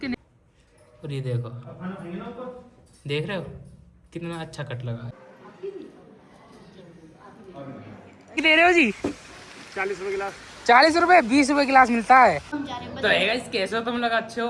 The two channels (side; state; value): both; identical; correlation 1.00